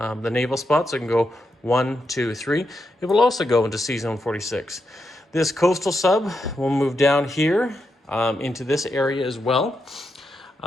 naval spots. So it can go 1, 2, 3. It will also go into Sea Zone 46. This coastal sub will move down here into this area as well.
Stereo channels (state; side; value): normal; both; correlation 0.84